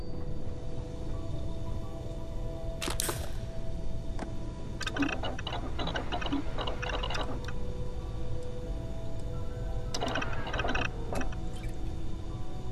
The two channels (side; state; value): both; identical; correlation 1.00